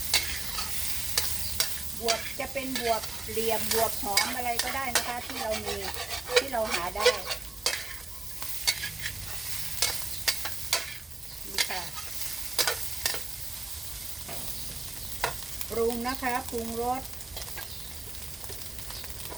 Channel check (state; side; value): quieter; left; 3.1 dB